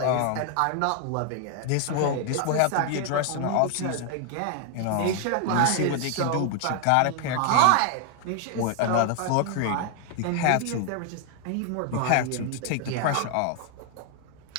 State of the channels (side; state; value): both; different; correlation 0.00